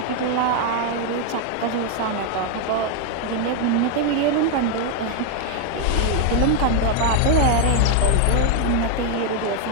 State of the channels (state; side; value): different; both; correlation 0.00